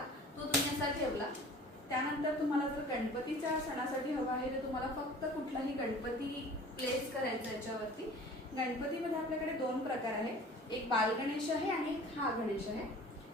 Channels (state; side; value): normal; both; correlation 0.45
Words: तो तुम्ही असा ठेवला। त्यानंतर तुम्हाला जर गणपतीच्या सणासाठी हवा आहे तर तुम्हाला फक्त कुठलाही गणपती प्लेस करायचा याच्यावरती। गणपतीमध्ये आपल्याकडे दोन प्रकार आहे, एक बाल गणेश आहे आणि एक हा गणेश आहे।